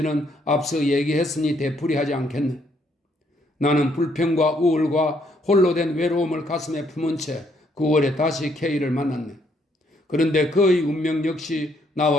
앞서 얘기했으니 되풀이하지 않겠네. 나는 불평과 우울과 홀로 된 외로움을 가슴에 품은 채 9월에 다시 K를 만났네. 그런데 그의 운명 역시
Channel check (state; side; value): normal; both; correlation 0.70